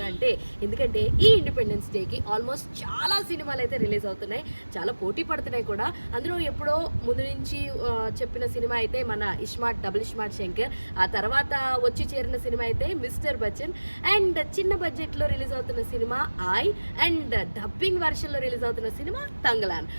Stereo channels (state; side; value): inverted; both; correlation -1.00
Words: అంటే ఎందుకంటే ఈ ఇండిపెండెన్స్ డేకి ఆల్మోస్ట్ చాలా సినిమాలు అయితే రిలీజ్ అవుతున్నాయి, చాలా పోటీ పడుతున్నాయి కూడా. అందులో ఎప్పుడో ముందు నుంచి చెప్పిన సినిమా అయితే మన ఇస్మార్ట్ డబుల్ ఇస్మార్ట్ శంకర్, ఆ తర్వాత వచ్చి చేరిన సినిమా అయితే మిస్టర్ బచ్చన్, అండ్ చిన్న బడ్జెట్లో రిలీజ్ అవుతున్న సినిమా ఐ, అండ్ డబ్బింగ్ వర్షన్లో రిలీజ్ అవుతున్న సినిమా తంగలాన్.